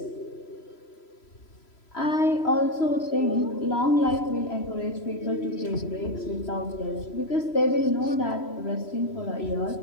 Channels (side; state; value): right; late; 3.0 ms